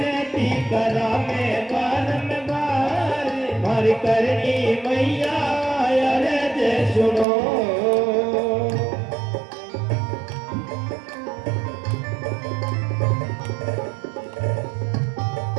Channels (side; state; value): left; drops out; at 7.2 s